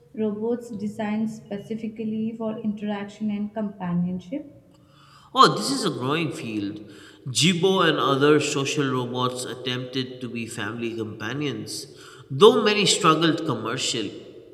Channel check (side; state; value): both; identical; correlation 1.00